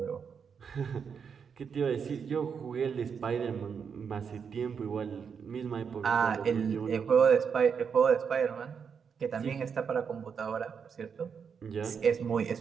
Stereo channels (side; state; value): left; quieter; 6.6 dB